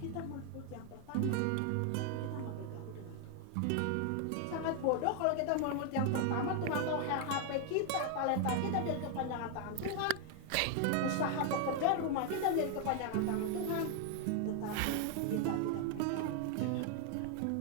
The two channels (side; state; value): both; different; correlation 0.00